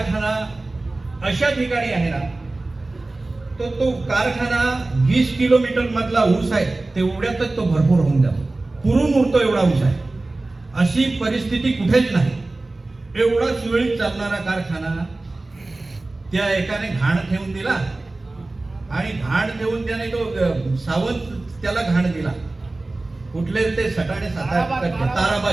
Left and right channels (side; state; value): left; quieter; 3.1 dB